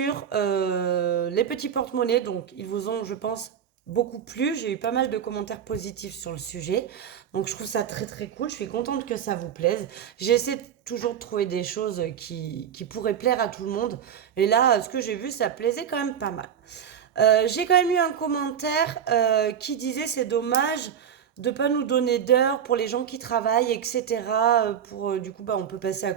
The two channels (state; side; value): quieter; left; 8.7 dB